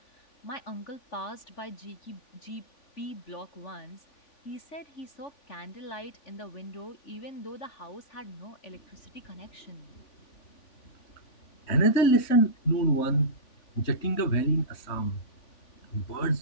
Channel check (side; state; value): right; late; 3.5 ms